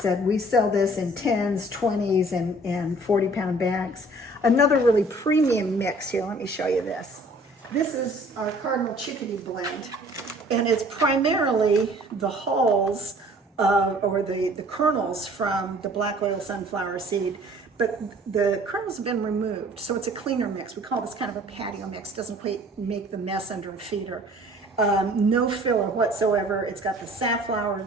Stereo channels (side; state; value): both; normal; correlation 0.52